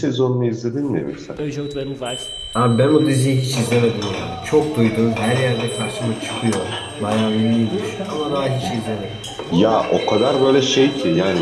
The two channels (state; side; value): identical; both; correlation 1.00